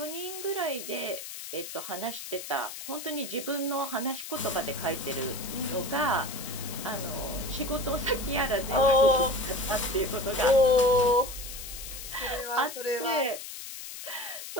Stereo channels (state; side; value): noise; left; hiss, 10 dB below the sound